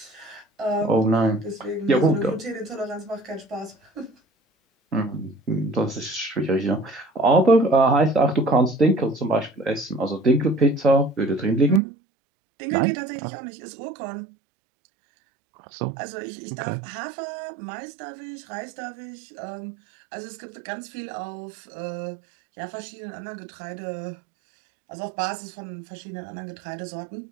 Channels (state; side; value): drops out; left; at 11.8 s